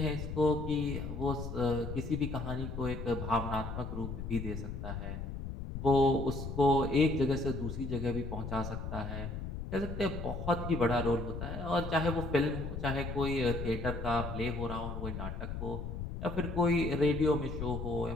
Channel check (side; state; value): left; noise; rumble, 6 dB below the sound